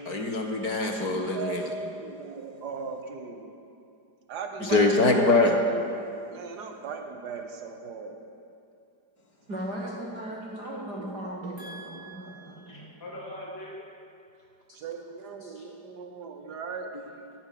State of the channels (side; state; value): left; late; 4.9 ms